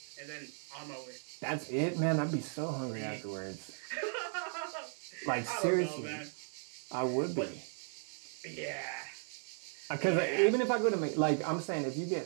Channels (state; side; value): silent; left; 54 dB below the other